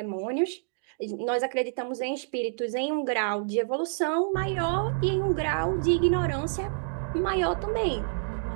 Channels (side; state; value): left; silent; digital silence